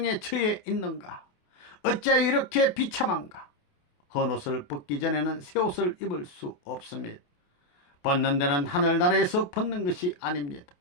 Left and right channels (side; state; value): right; late; 28 ms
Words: 처해 있는가? 어찌하여 이렇게 비참한가? 헌옷을 벗기 전에는 새 옷을 입을 수 없습니다. 벗는 데는 하늘나라에서 벗는 것이 아닙니다.